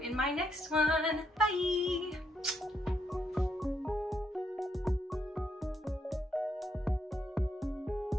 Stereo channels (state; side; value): normal; both; correlation 0.77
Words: my next one. Bye!